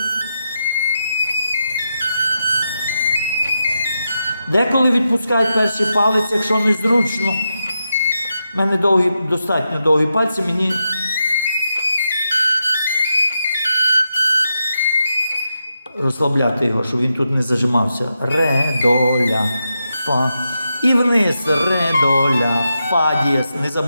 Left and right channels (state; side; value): inverted; both; correlation -0.87